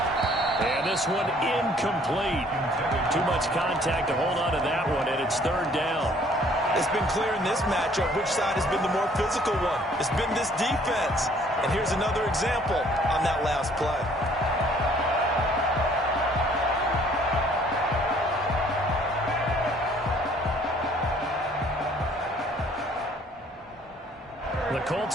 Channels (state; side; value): normal; both; correlation 0.59